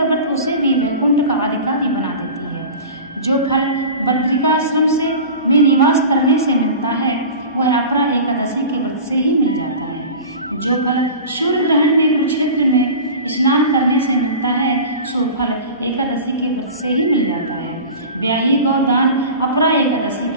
व्रत उसे भी वैकुंठ का अधिकारी बना देती है। जो फल बद्रिकाश्रम से में निवास करने से मिलता है वह अपरा एकादशी के व्रत से ही मिल जाता है। जो फल सूर्य ग्रहण में कुरुक्षेत्र में स्नान करने से मिलता है सो फल एकादशी के व्रत से ही मिल जाता है। ब्याही गौदान अपरा एकादशी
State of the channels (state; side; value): inverted; both; correlation -0.34